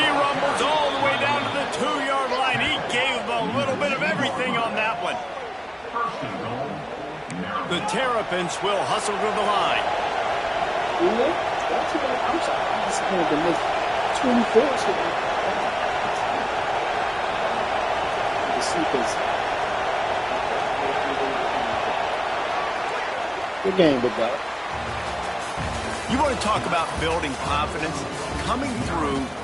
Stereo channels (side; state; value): both; identical; correlation 1.00